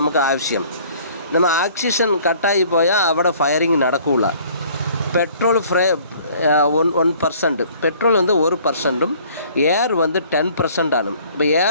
அவசியம். நம்ம ஆக்சிஜன் கட்டாகி போயால் അവിടെ ஃபயரிங் நடக்கூல. பெட்ரோல் 1% பெட்ரோல் வந்து 1%ம் ஏர் வந்து 10% ആണ്. இப்போ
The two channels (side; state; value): both; inverted; correlation -0.55